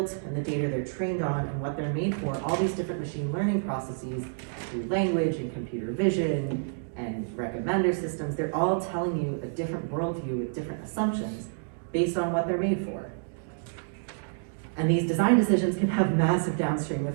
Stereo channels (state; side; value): silent; left; digital silence